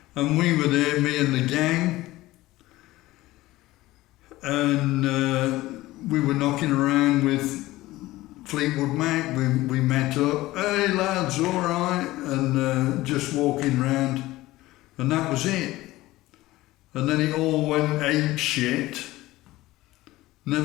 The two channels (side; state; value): right; quieter; 17.7 dB